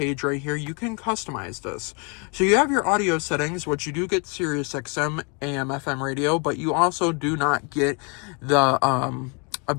right here, you can customize this. So you have your audio settings, which you do get Sirius XM, AM, FM radio, but you also do not get the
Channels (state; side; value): quieter; right; 34.8 dB